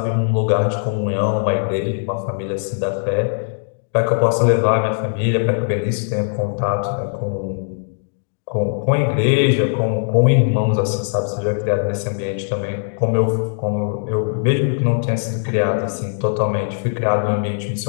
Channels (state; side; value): silent; right; digital silence